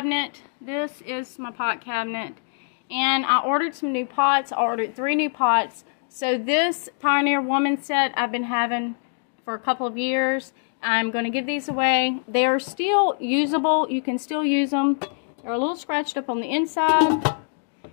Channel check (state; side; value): silent; right; 60 dB below the other